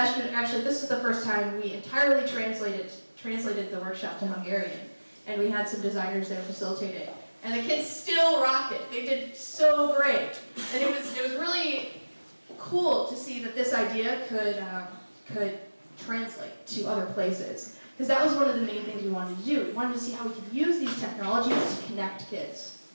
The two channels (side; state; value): both; inverted; correlation -1.00